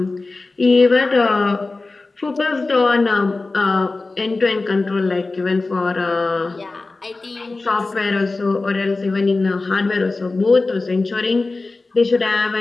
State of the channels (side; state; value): right; quieter; 3.5 dB